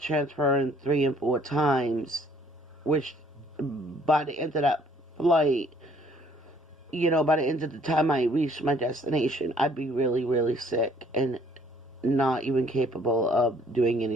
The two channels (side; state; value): both; normal; correlation 0.61